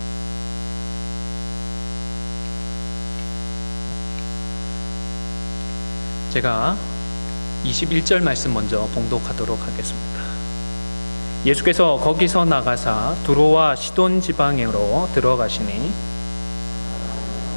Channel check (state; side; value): inverted; both; correlation -1.00